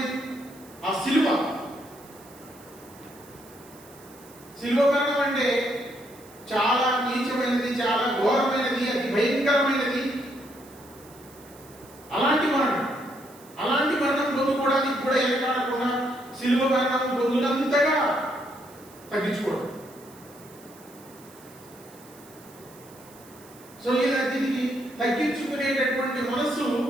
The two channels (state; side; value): noise; right; hiss, 23 dB below the sound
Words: ఆ శిలువ మరణం అంటే చాలా నీచమైనది, చాలా ఘోరమైనది, అతి భయంకరమైనది. అలాంటి మరణం పొందుకోవడానికి కూడా ఎనకాడకుండా శిలువ మరణం పొందినంతగా తగ్గించుకోవడం. సో దీనికి తగ్గించుకునేటటువంటి మనస్సు